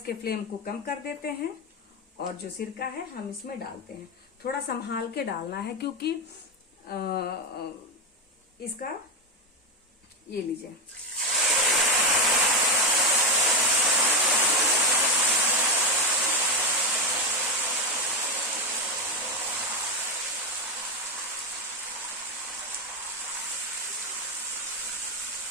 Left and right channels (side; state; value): both; normal; correlation 0.10